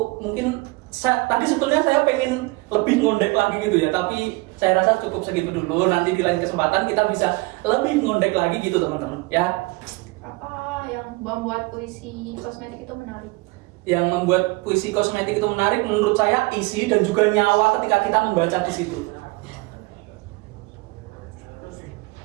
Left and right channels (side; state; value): left; quieter; 24.4 dB